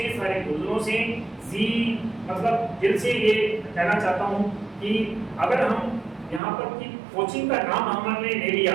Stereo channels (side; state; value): left; drops out; at 6.4 s